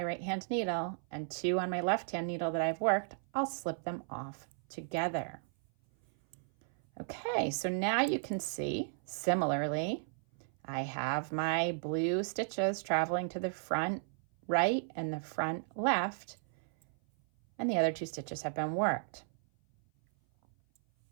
right hand needle and 2 on my left hand needle that I've worked, I'll slip them off together. Okay, so now you can see, similarly, I have my blue stitches traveling to the front right and the front left, and the other 2 stitches have been worked.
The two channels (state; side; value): silent; left; 55 dB below the other